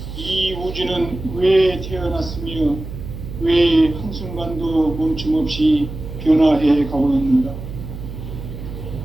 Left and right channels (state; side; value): noise; right; hum, 10 dB below the sound